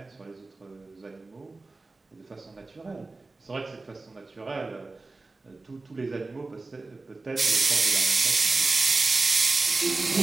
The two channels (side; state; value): left; quieter; 3.5 dB